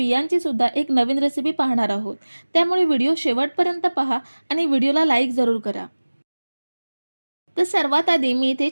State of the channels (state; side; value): inverted; both; correlation -1.00